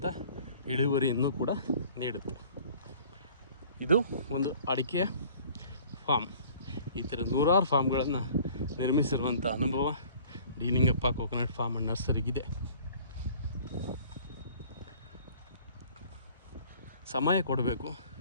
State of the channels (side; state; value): both; inverted; correlation -0.51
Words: ಇಳುವರಿಯನ್ನು ಕೂಡ ನೀಡುತ್ತೆ. ಇದು ಒಂದು ಅಡಿಕೆಯ ಫಾರ್ಮ್. ಈ ಥರ 100 ಫಾರ್ಮ್ಗಳನ್ನು ನಿರ್ಮಿಸಿರುವಂಥ ಅನುಭವ D Lingappa coconut farm and ನರ್ಸರಿಗಿದೆ. ಸಮಯ ಕೊಡಬೇಕು,